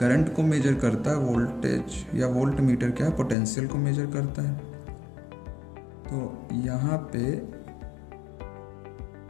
को मेजर करता है, वोल्टेज या वोल्ट मीटर क्या है? पोटेंशियल को मेजर करता है। तो यहाँ पे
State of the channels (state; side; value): drops out; right; at 3.4 s